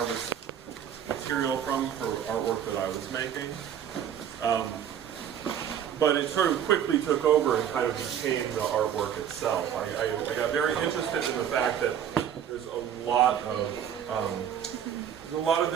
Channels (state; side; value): quieter; left; 9.2 dB